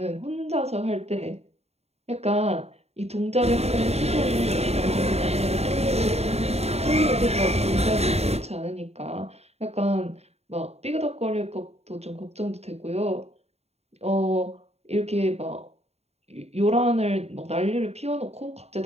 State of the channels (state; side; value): late; left; 0.31 ms